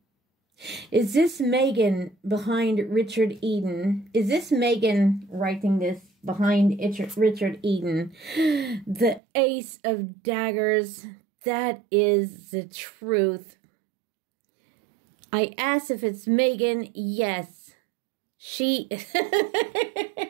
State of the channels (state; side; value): drops out; left; at 9.2 s